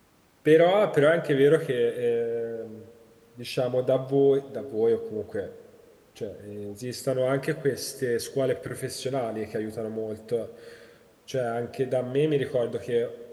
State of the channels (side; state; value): both; identical; correlation 1.00